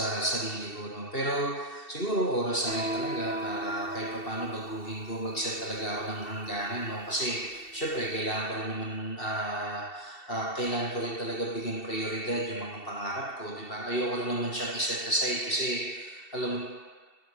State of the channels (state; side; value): late; right; 2.7 ms